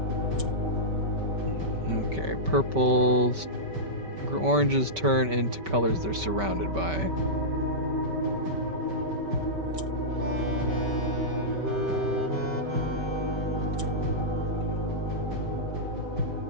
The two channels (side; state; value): left; late; 5.2 ms